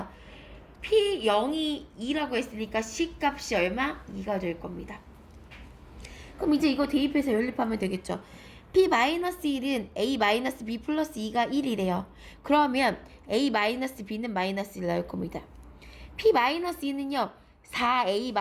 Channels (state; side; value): identical; both; correlation 1.00